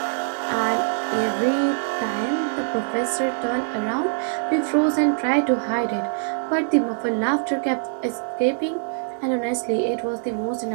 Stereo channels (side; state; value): left; silent; digital silence